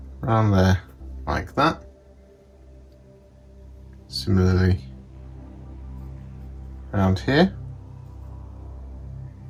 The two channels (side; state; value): both; identical; correlation 1.00